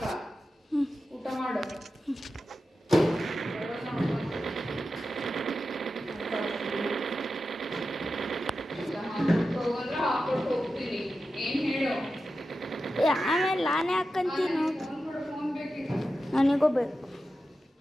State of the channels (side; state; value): both; normal; correlation 0.91